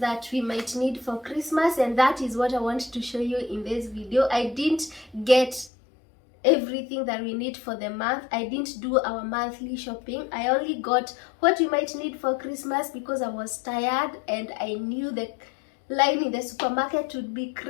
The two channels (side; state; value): right; drops out; at 5.7 s